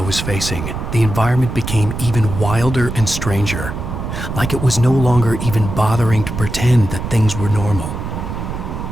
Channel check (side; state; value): right; noise; rumble, 6 dB below the sound